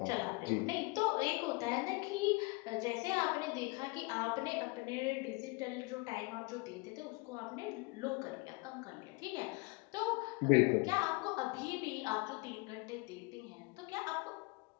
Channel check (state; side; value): quieter; right; 27.3 dB